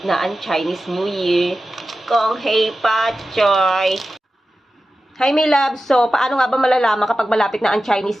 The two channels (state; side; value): normal; both; correlation 0.93